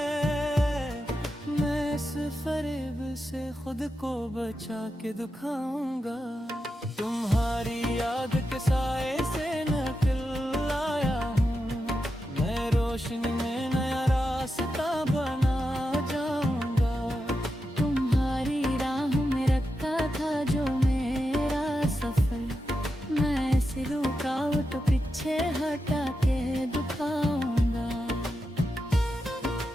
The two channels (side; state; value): both; normal; correlation 0.88